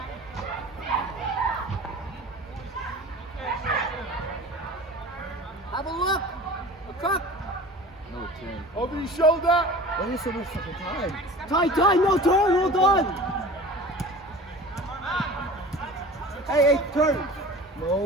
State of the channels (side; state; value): both; normal; correlation 0.39